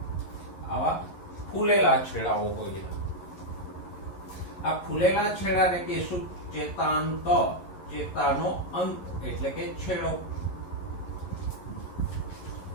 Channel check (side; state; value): right; late; 11 ms